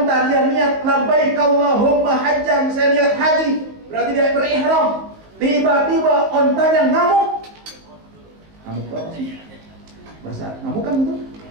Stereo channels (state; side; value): late; left; 19 ms